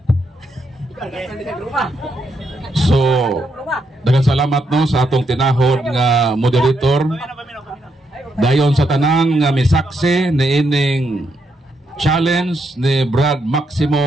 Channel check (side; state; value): both; normal; correlation 0.78